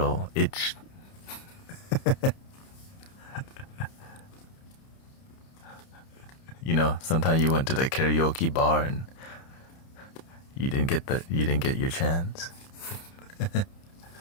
itch? You know, sometimes you went to the karaoke bar and you didn't get your chance.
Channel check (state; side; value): late; right; 30 ms